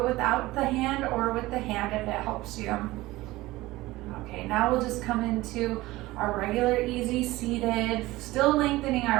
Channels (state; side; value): quieter; left; 18.8 dB